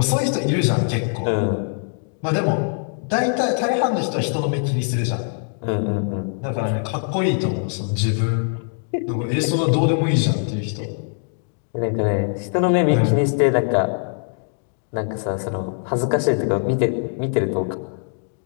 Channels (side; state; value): right; silent; 64 dB below the other